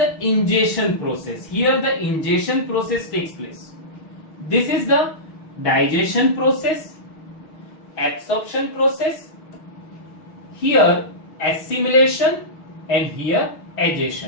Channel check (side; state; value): right; late; 6.4 ms